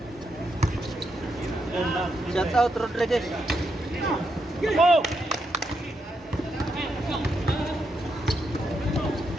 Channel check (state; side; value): normal; both; correlation 0.81